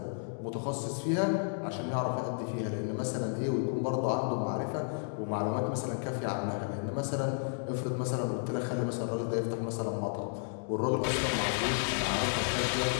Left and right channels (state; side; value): silent; right; digital silence